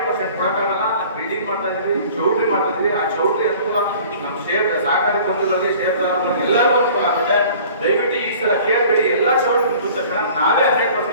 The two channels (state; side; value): inverted; both; correlation -0.48